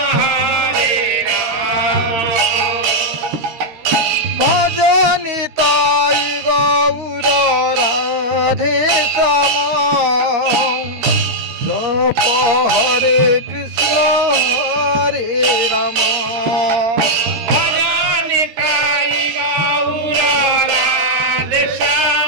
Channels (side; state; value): left; late; 13 ms